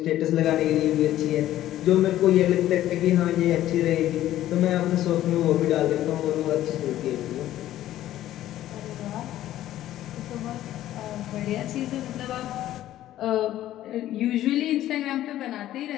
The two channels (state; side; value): quieter; right; 13.4 dB